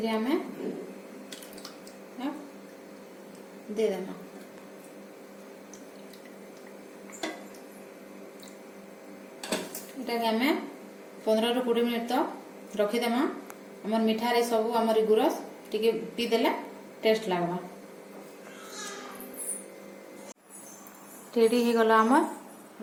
आमे दे देमा। एटा के आमे 15 ରୁ 20 मिनिट तो रखी देमा। हमर मिठा रे सब हमर गुरस टिके पी देले टेस्ट लागबा। रेडी हो गला हमर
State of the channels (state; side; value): identical; both; correlation 1.00